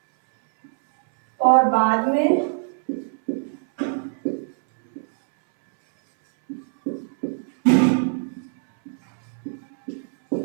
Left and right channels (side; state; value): left; silent; 64 dB below the other